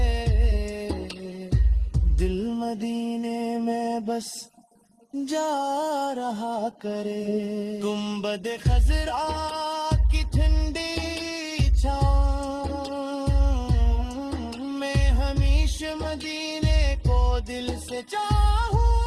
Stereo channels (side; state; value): both; identical; correlation 1.00